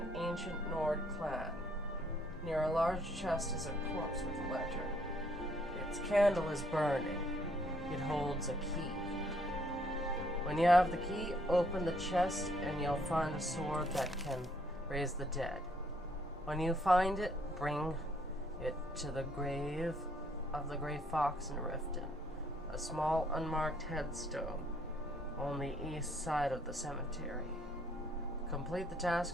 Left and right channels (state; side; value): normal; both; correlation 0.67